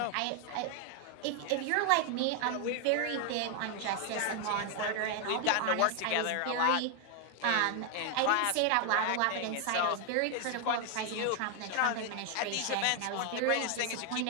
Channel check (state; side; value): different; both; correlation 0.00